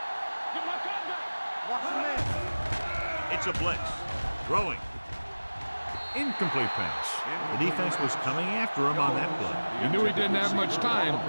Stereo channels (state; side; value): inverted; both; correlation -1.00